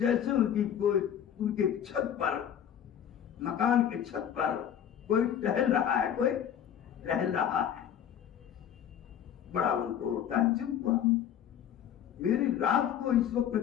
ان کے چھت پر، مکان کے چھت پر کوئی ٹہل رہا ہے، کوئی ٹہل رہا ہے. بڑا ان کو تعجب ہوا، میری رات کو اس وقت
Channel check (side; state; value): right; quieter; 9.4 dB